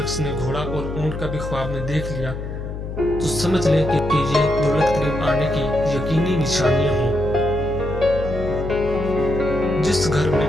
نے گھوڑا اور اونٹ کا بھی خواب میں دیکھ لیا تو سمجھ لے کہ یہ دولت قریب آنے کی یقینی نشانیاں ہیں۔ جس گھر میں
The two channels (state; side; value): noise; left; hum, 7 dB below the sound